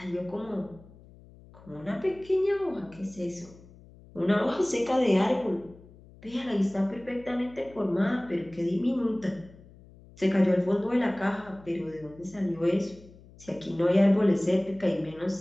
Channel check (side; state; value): left; noise; hum, 23 dB below the sound